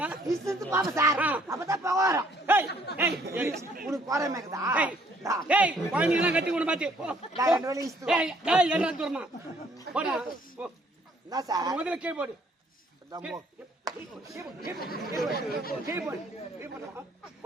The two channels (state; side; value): normal; both; correlation 0.63